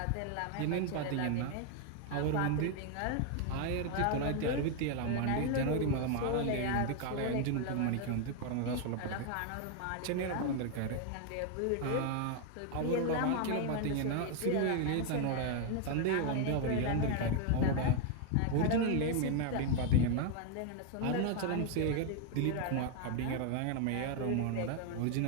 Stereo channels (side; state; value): both; different; correlation 0.00